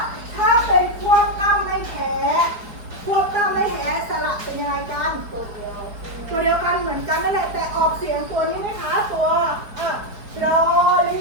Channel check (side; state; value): left; late; 4.6 ms